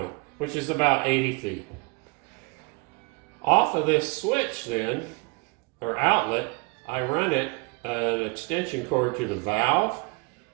which is about 80 feet. Off of this switch then, or outlet, I run an extension cord to the valve,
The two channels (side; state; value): left; quieter; 30.2 dB